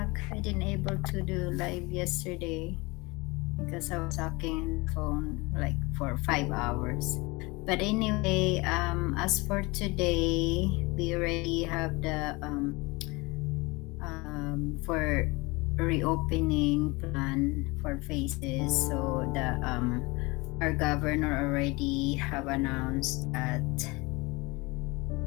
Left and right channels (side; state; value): right; quieter; 24.7 dB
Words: I didn't able to do live yesterday because I was talking on the phone like for 5 hours. But anyway, as for today, we already have the for reopening plan for phases. So the our governor already have announced that